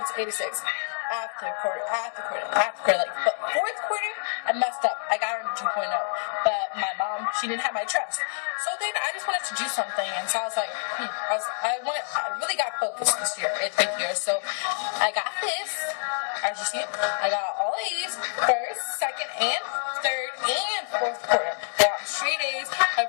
after quarter. But 4th quarter, I messed up. I got her 2.0. But my mom, she didn't have my trust. So then I just wanted to do something, and so I was like, I really got focused this year, 8th year. So I got this. As you see, I got all A's, 1st, 2nd, and 3rd, and 4th quarter. I got straight A's. I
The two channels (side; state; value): right; silent; 60 dB below the other